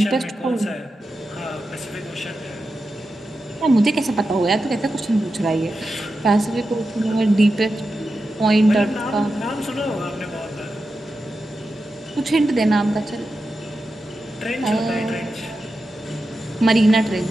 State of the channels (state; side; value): normal; both; correlation 0.90